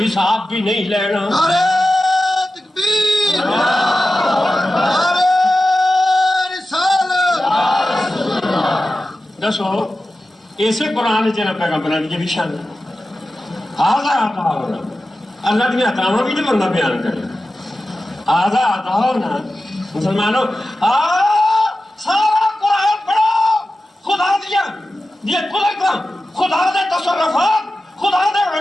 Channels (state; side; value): normal; both; correlation 0.93